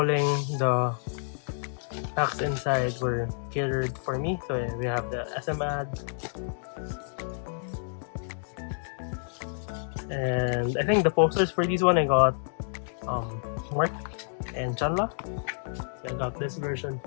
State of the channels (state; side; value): silent; right; digital silence